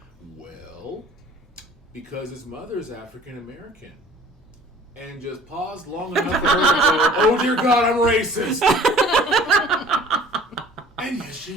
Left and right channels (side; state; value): both; normal; correlation 0.49